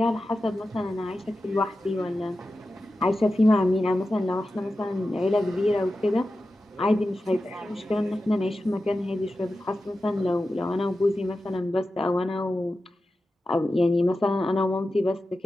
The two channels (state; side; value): normal; both; correlation 0.93